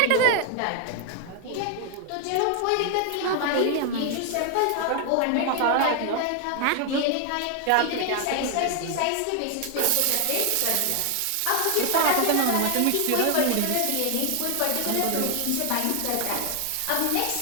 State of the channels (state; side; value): different; both; correlation 0.00